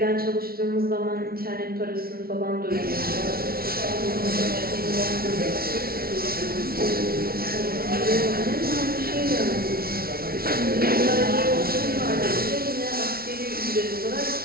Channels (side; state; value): left; late; 0.44 ms